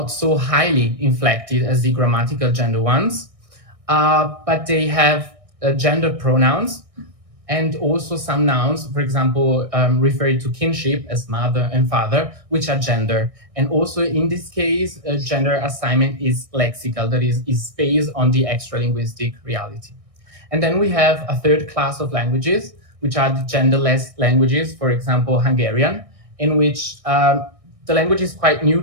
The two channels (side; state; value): left; late; 1.6 ms